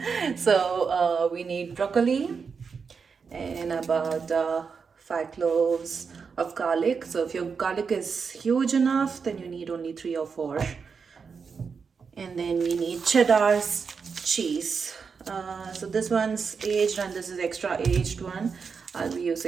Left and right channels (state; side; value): quieter; left; 5.6 dB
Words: So we need broccoli and about 5 cloves of garlic. So if your garlic is huge enough, then you need only 3 or 4. And then we need cheddar cheese. So this one's aged and this is extra aged one. I'll be